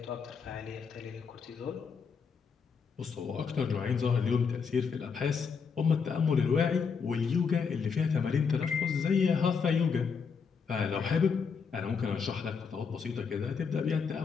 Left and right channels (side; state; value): right; quieter; 5.8 dB